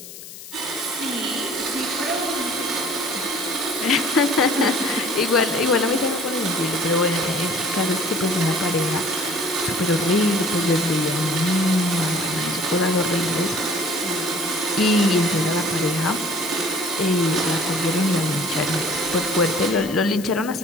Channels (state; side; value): noise; left; hiss, 14 dB below the sound